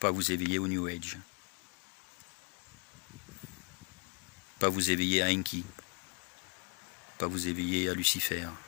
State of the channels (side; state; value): right; quieter; 36.8 dB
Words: vous éveiller au New Age, pas vous éveiller à Enki, pas vous éveiller à Lucifer.